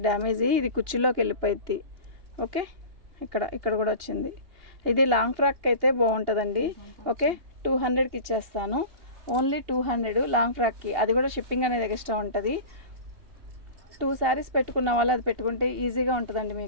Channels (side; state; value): left; late; 2.8 ms